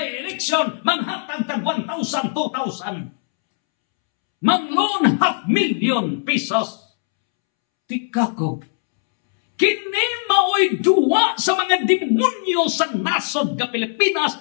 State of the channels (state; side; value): silent; right; 66 dB below the other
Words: election, manghatag tag 1,000, 2,000. Mang-loan 500,000 pesos. Tikako. Kini mao'y duwa sa mga demonyo sa nasod ng Pilipinas,